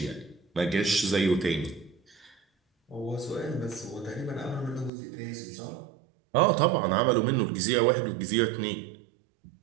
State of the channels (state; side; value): drops out; left; at 4.9 s